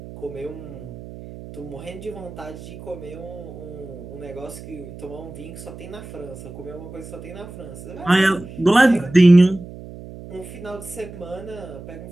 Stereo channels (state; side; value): noise; right; hum, 14 dB below the sound